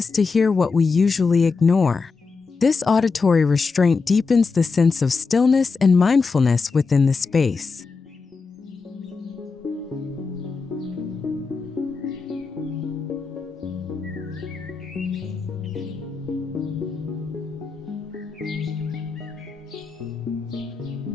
to hear what we usually ignore. This auditory restraint deepens the sense of stillness and mindfulness within the space.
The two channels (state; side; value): quieter; right; 4.6 dB